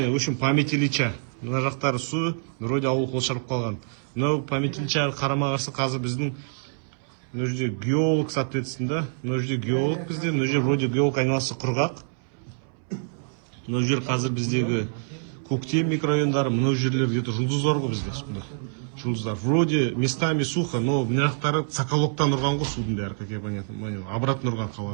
в общем, память Ильича. Мына жақтары су, вроде ауыл қоршап қалған. Мынау память Ильича қарама-қарсы қазір біздің мына жерде геолог, соответственно, мына жерде геолог бізде, мына жерде вроде геолог айналасы құрғақ. Мына жер қазір біздегі Көктем микрорайондары, мына жерлер где-то жұлдыздар ғой бізде. Жұлдыздар. Вроде местами сухо, но мына жақтары Соколовтан ұрған ғой судың бәрі, как я понятно, обратно ұрған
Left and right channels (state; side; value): silent; left; 61 dB below the other